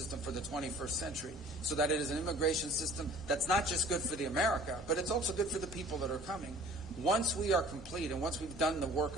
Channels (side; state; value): both; normal; correlation 0.49